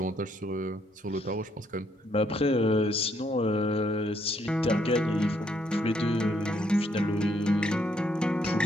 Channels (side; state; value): both; normal; correlation 0.71